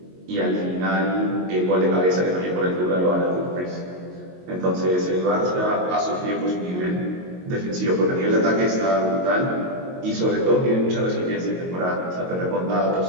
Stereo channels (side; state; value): left; late; 22 ms